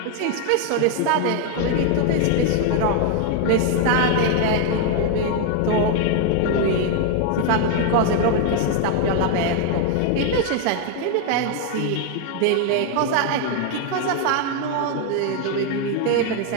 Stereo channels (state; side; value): different; both; correlation 0.01